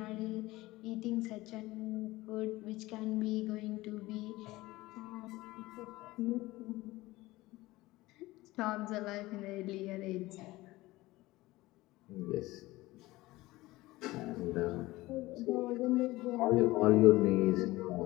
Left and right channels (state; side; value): quieter; right; 19.0 dB